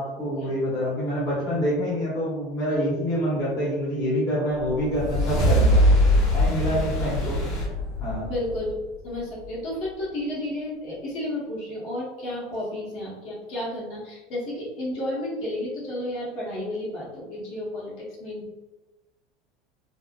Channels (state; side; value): normal; both; correlation 0.38